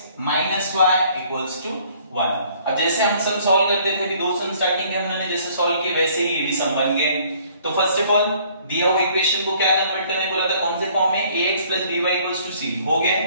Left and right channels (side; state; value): both; inverted; correlation -0.59